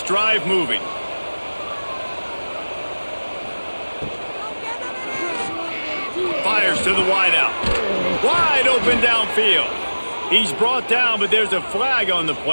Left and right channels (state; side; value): inverted; both; correlation -1.00